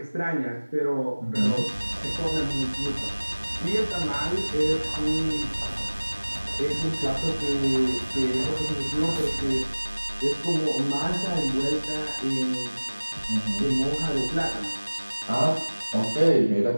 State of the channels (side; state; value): both; inverted; correlation -1.00